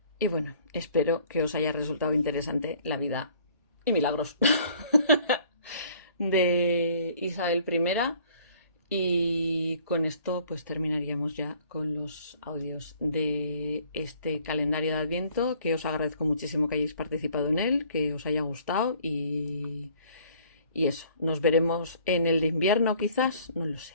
Y bueno, espero que os haya resultado interesante la vida y milagros de Isabel I, y con esto pues terminaríamos ya con los audios de este calendario de Adviento, que os agradezco muchísimo que hayáis participado en él, que os haya gustado, y eso, nos veremos en el de invierno quizás, no lo sé,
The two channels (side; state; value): both; inverted; correlation -0.56